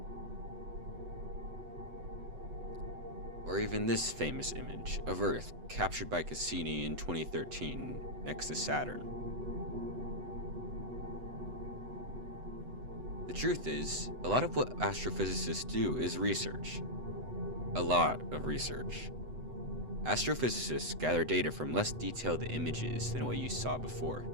Or even this famous image of Earth captured by Cassini in 2013 next to Saturn. The truth is, a lot of what astrophysicists do is research. A lot of research. Astrophysicists gather data from less detailed images than what you saw before.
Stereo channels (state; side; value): late; left; 8.0 ms